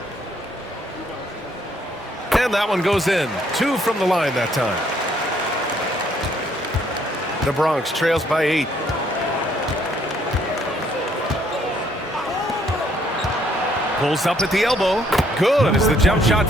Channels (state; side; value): normal; both; correlation 0.67